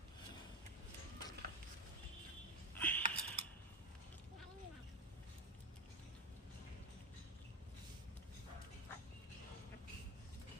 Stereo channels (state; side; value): normal; both; correlation 0.13